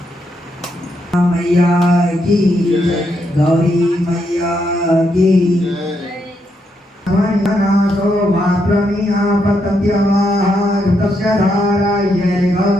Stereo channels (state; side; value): normal; both; correlation 0.79